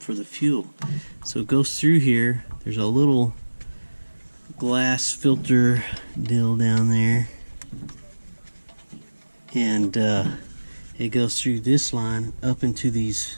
for the fuel. So it goes through here. There's a little glass filter deal down there, and it goes through this line up into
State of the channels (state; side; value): inverted; both; correlation -1.00